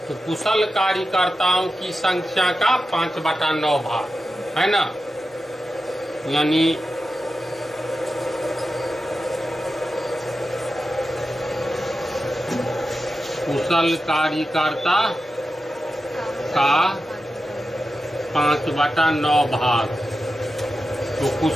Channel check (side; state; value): both; normal; correlation 0.91